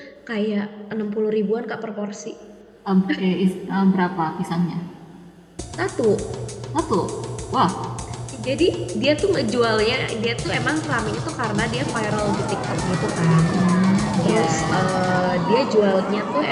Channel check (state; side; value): identical; both; correlation 1.00